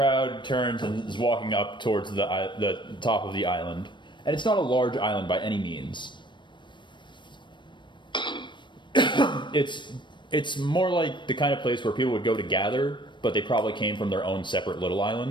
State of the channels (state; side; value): late; right; 0.22 ms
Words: turns and is walking up towards the top of the island. And it's not a large island by any means. It's more like the kind of place where people would go to gather but they probably came from their own separate little